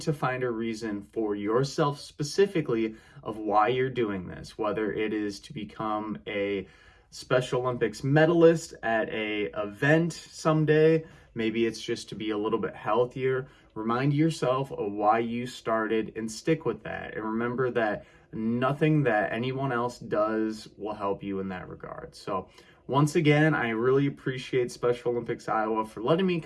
to find a reason for yourself specifically of why you're doing this, whether it is to become a Special Olympics medalist at a event someday, maybe it's just to be a little bit healthier. Remind yourself of why you started and stick with that. And remember that nothing that anyone else does will help you in that regard. So once again, I really appreciate Special Olympics Iowa for letting me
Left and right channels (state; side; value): identical; both; correlation 1.00